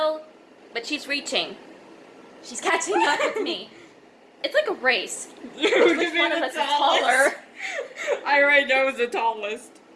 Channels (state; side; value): identical; both; correlation 1.00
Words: but she's reaching. She's catching up with me. It's like a race. Which one of us is taller? I already know who's the tallest.